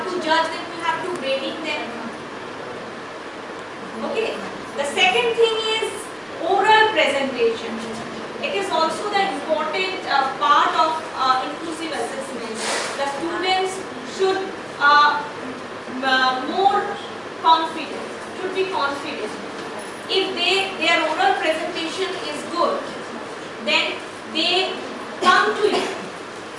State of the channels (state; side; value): identical; both; correlation 1.00